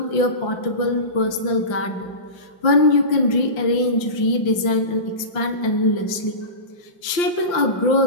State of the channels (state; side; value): late; right; 5.7 ms